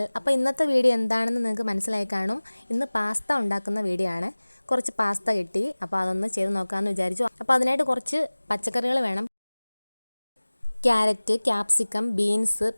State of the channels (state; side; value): inverted; both; correlation -1.00